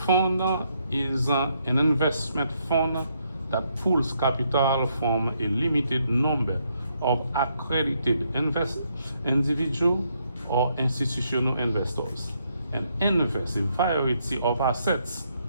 is an investment fund that pools capital from a limited number of accredited individual or institutional investors and invest a variety of assets,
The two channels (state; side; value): inverted; both; correlation -0.75